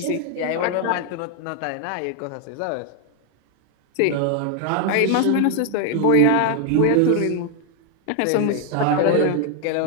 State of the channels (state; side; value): different; both; correlation 0.01